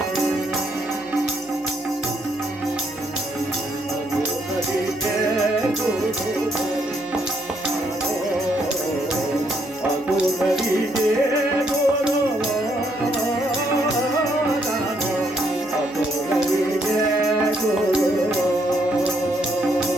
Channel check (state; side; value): noise; left; hum, 27 dB below the sound